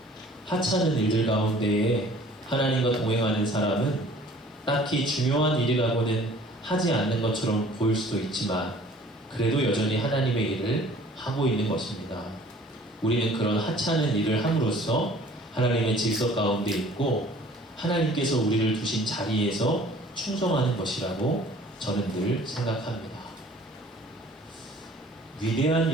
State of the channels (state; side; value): normal; both; correlation 0.51